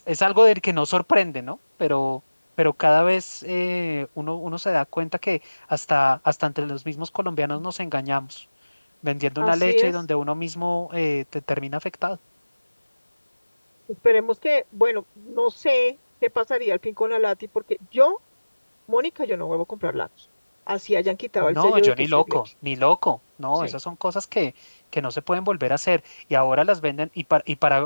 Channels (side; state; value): both; inverted; correlation -1.00